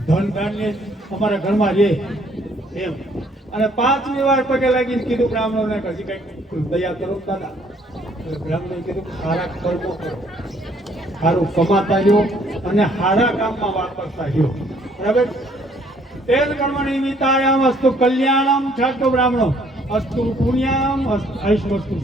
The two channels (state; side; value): normal; both; correlation 0.63